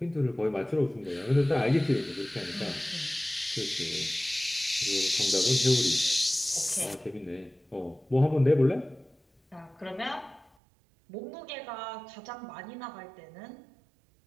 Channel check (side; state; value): left; drops out; at 10.5 s